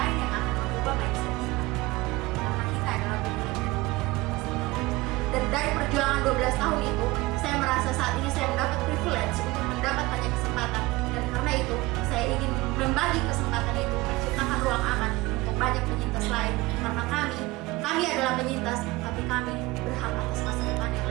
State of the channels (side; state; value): left; quieter; 20.9 dB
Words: yang akan mengubah mindset kita, karena kita adalah pemilik dari dunia kita sendiri. Dan dari perjuangan 12 tahun itu, saya merasa saat ini saya mendapat privilege untuk mendapat banyak kesempatan, dan karena itu saya ingin membagi kesempatan itu, menciptakan ruang aman untuk banyak penyintas lain, karena kami adalah penyintas, tapi kami berhak